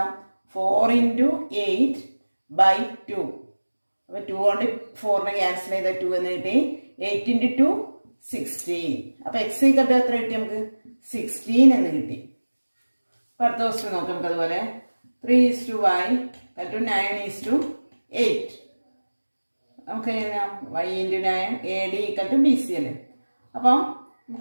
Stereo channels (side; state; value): both; inverted; correlation -1.00